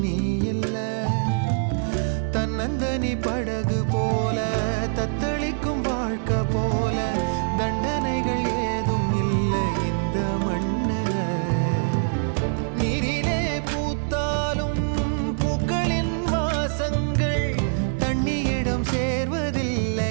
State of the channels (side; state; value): left; silent; digital silence